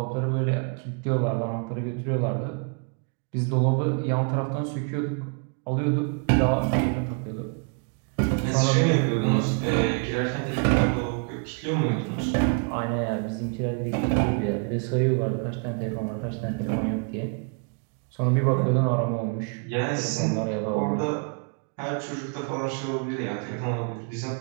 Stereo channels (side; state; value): left; quieter; 35.7 dB